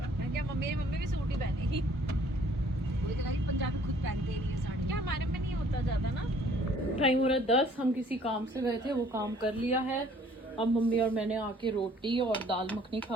है। क्या मम्मी भी सूट ही पहनेगी? वही तो कह, पंजाबी खुद पहनते ही नहीं है साड़ी। क्या हमारे में नहीं होता ज्यादा ना। टाइम हो रहा है 10। हम किसी काम से गए थे, वो काम कर लिया है। अब मम्मी और मैंने आके रोटी और दाल मखनी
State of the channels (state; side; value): normal; both; correlation 0.58